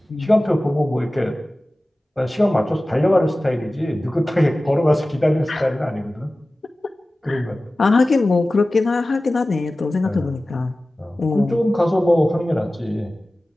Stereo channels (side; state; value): both; normal; correlation 0.97